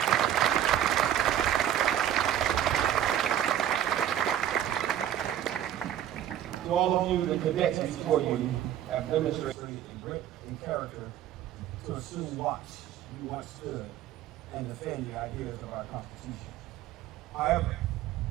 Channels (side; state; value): left; quieter; 11.0 dB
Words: To all of you, the cadets before you have demonstrated a grit and character to assume watch you once stood and defend the ideas of our Constitution. However,